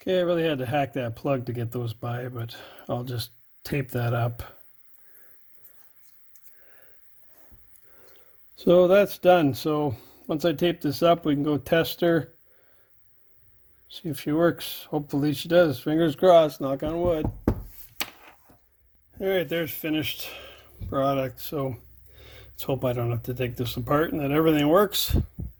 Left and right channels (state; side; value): identical; both; correlation 1.00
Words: Okay, I really had to hack that plug to get those by, but I'll just tape that up. So that's done. So once I tape this up, we can go test her. See if she works. Hopefully she does. Fingers crossed, knock on wood. All right, there's finished product. So let's hope I don't have to take this apart and that everything works.